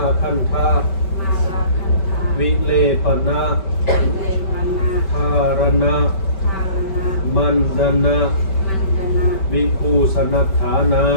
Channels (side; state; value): right; late; 5.2 ms